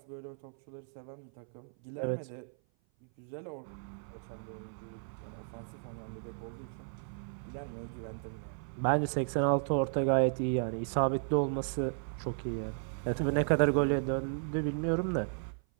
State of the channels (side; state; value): left; silent; 55 dB below the other